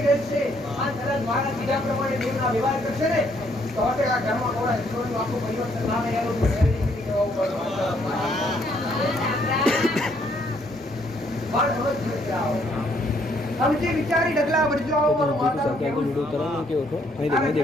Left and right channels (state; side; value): normal; both; correlation 0.68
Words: રહેશે અને કદાચ મારા બીજા પ્રમાણે દેવના વ્યવહાર કરશે ને તો હવે આ ઘરમાં થોડા જીવનનું આખું પરિવર્તન લાવે એનું સમજી વિચારી ડગલા વળજો આવો મારો માતા કેવું કરવાનું કેવો છો નહીં